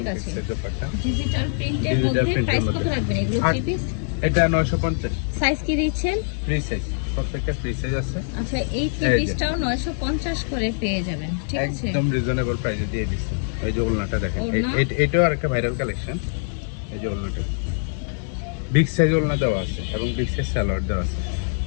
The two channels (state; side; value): silent; right; 63 dB below the other